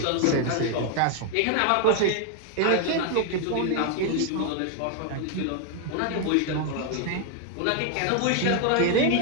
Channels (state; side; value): different; both; correlation 0.01